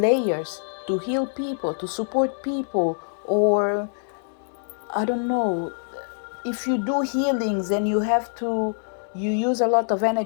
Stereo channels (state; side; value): silent; right; digital silence